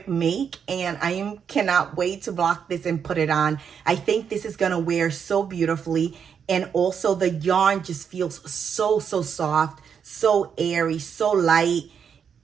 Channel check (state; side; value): quieter; left; 7.2 dB